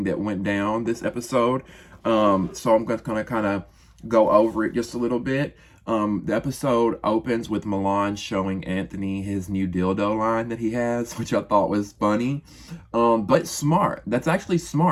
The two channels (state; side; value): identical; both; correlation 1.00